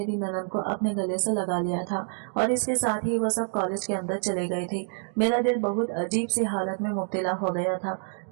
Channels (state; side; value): silent; left; digital silence